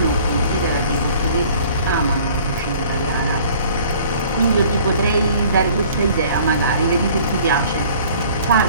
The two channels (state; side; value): inverted; both; correlation -0.52